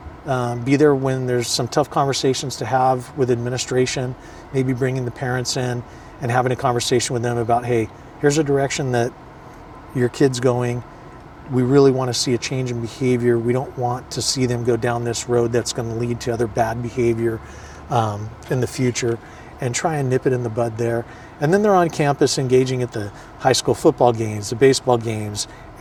be there when there's some tough conversations to have with administration, maybe bringing the parents in and having a conversation with them about, hey, here's a direction that your kid's going. We really want to see a change in behavior. We don't want to see them go down this road that's going to lead to other bad behavior in the future, and try and nip it in the bud there. And then they're on campus engaging at the high school football games, the baseball games.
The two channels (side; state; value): both; identical; correlation 1.00